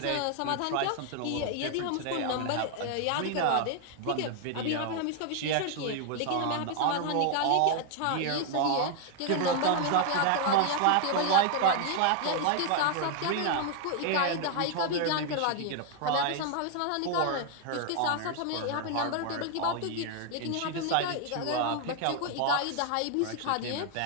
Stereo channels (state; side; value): different; both; correlation 0.00